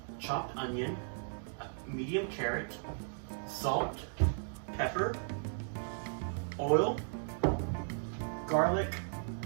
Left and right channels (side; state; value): left; silent; digital silence